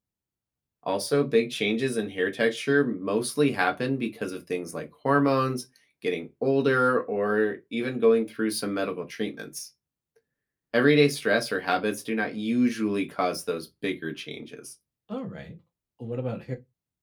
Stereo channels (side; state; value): both; identical; correlation 1.00